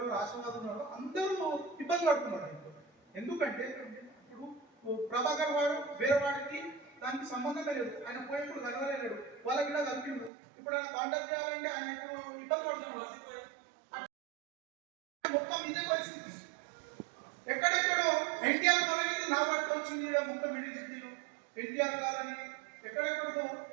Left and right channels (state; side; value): drops out; left; at 10.3 s